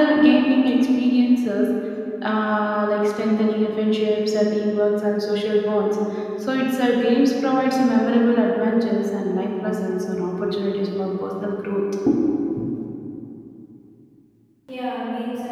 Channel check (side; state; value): both; identical; correlation 1.00